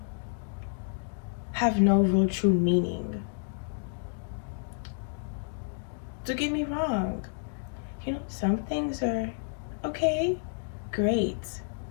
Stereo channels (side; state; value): right; silent; digital silence